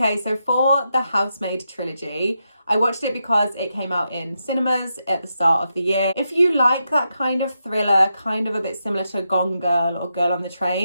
so for the Housemaid trilogy, I watched it because it came out in cinemas at the start of the year. If you like that kind of thriller, kind of a bit similar to Gone Girl or Girl on the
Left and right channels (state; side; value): inverted; both; correlation -0.85